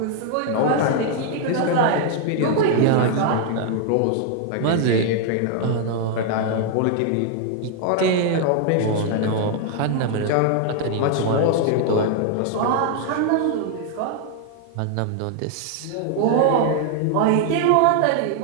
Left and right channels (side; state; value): both; different; correlation 0.00